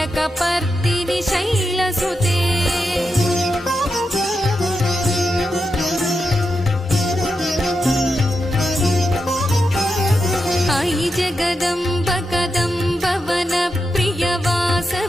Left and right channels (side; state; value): both; normal; correlation 0.87